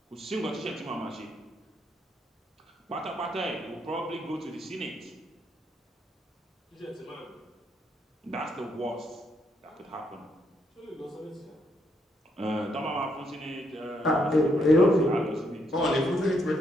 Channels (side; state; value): both; normal; correlation 0.75